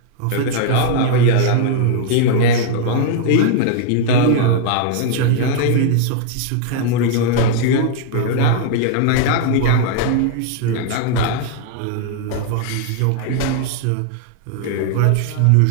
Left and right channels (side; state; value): both; different; correlation 0.00